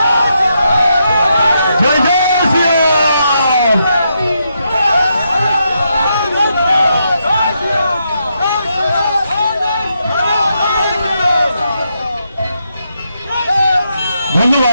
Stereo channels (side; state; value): both; inverted; correlation -0.81